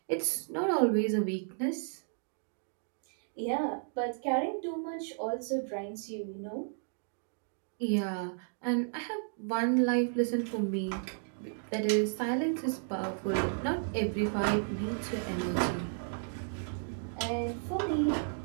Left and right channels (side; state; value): left; silent; digital silence